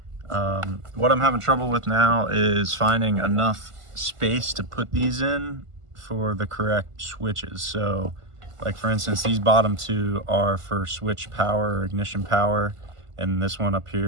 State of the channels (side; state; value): left; late; 1.5 ms